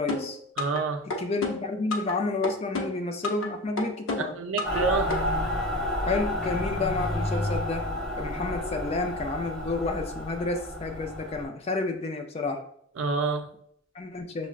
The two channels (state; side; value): normal; both; correlation 0.31